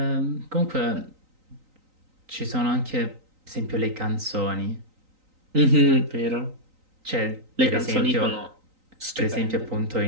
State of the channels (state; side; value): late; left; 3.9 ms